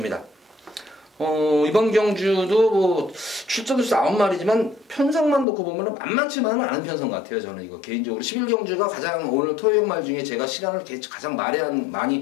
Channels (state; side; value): drops out; right; at 5.5 s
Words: 이번 경주도 뭐 출전수 9마리지만 편성만 놓고 보면 만만치만은 않은 편성 같아요. 저는 이거 개인적으로 11경주가 가장 오늘 토요일 말 중에 제가 시간을 가장